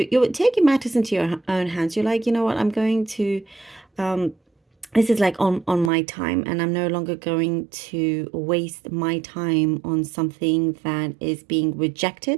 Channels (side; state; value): left; drops out; at 5.9 s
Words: taking matters into your own hands. You're like, you know what, I'm going to this is like on my time, and I'm no longer going to waste my time on something that is being